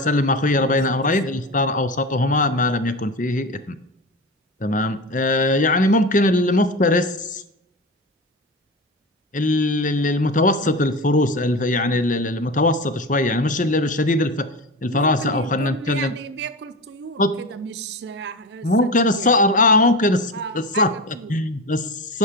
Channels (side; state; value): both; normal; correlation 0.26